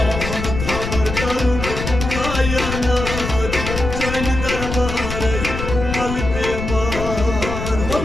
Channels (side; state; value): left; noise; rumble, 5 dB below the sound